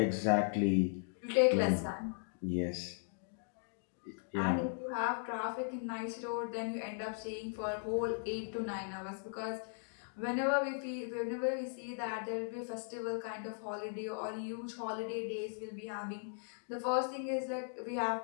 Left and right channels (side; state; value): right; silent; digital silence